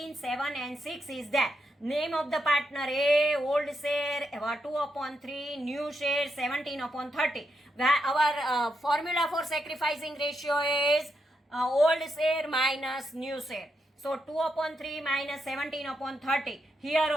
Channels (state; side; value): normal; both; correlation 0.82